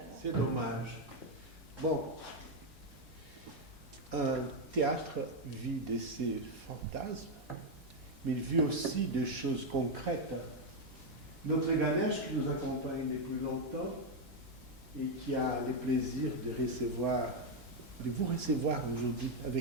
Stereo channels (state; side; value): normal; both; correlation 0.03